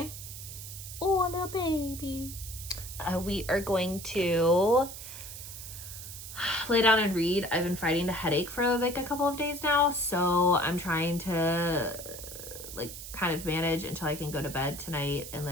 oh, no baby. We are going to lay down and read. I've been fighting a headache for like a couple of days now, so I'm trying to like kind of manage until I can go to bed tonight and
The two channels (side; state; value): right; noise; hiss, 11 dB below the sound